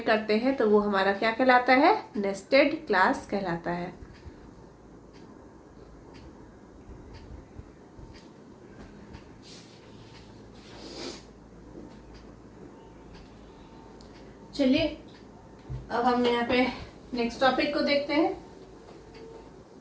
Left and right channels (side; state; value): both; identical; correlation 1.00